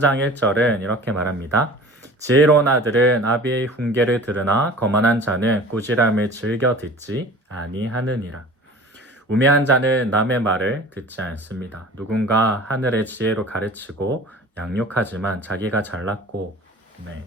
1절은 이렇게 말합니다. 지혜로운 아들은 아비의 훈계를 들으나 거만한 자는 꾸지람을 즐겨 듣지 아니하느니라. 우매한 자는 남의 말을 듣지 않습니다. 누군가 하늘의 지혜로 가르치고 양육하지만 자기가 잘났고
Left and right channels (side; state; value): both; normal; correlation 0.42